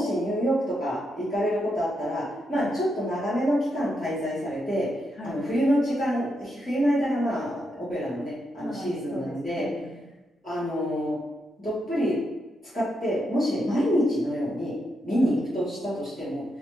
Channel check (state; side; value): normal; both; correlation 0.82